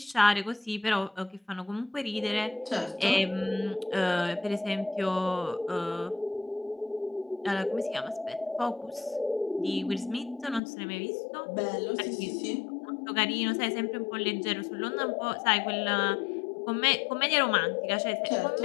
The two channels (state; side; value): drops out; right; at 10.6 s